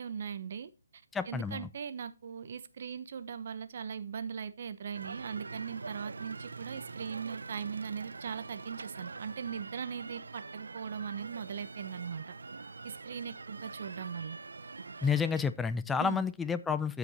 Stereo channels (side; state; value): both; normal; correlation 0.07